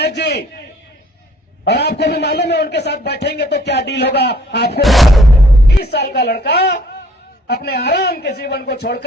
जी, और आपको भी मालूम है उनके साथ बैठेंगे तो क्या डील होगा आपको। 30 साल का लड़का अपने आराम के जीवन को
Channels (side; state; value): both; normal; correlation 0.59